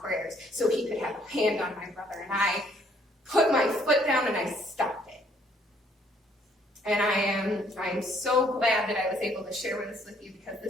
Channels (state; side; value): normal; both; correlation 0.65